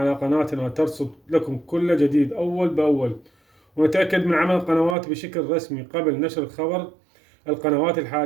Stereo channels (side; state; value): left; drops out; at 5.0 s